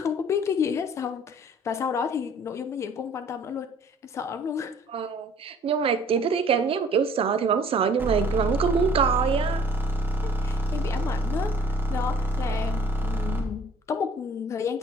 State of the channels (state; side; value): normal; both; correlation 0.55